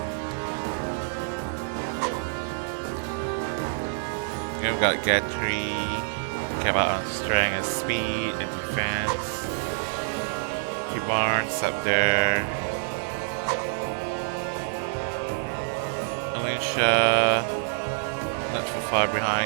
And we got Gatry, came out on strength and speed and defense. Barnes up there. Alicia, not too far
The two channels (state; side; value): silent; left; digital silence